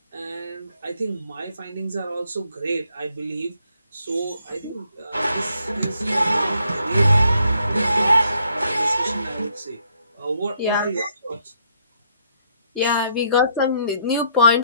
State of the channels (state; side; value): inverted; both; correlation -0.71